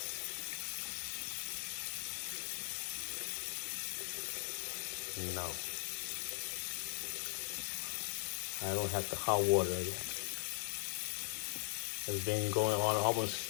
no. I don't have the hot water yet. It's been going on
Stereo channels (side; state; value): right; silent; digital silence